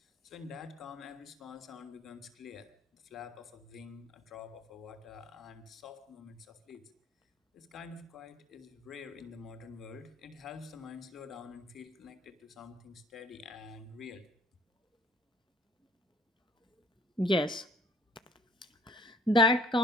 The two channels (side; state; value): both; normal; correlation 0.56